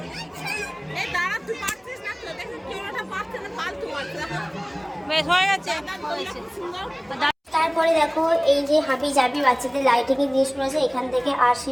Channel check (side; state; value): both; identical; correlation 1.00